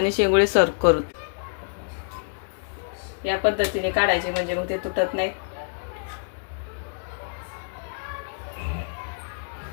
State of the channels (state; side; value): silent; right; digital silence